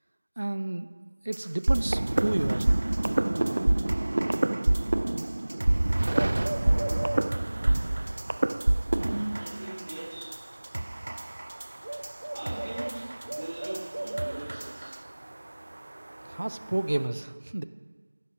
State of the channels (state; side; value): inverted; both; correlation -1.00